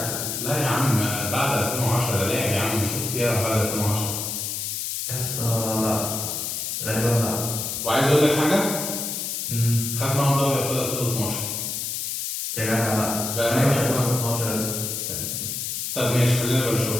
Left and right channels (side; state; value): left; noise; hiss, 3 dB below the sound